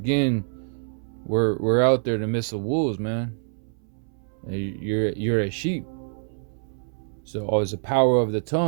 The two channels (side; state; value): left; silent; 61 dB below the other